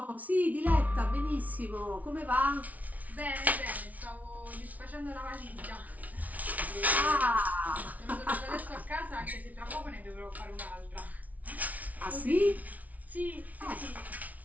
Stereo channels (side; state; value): left; late; 0.072 ms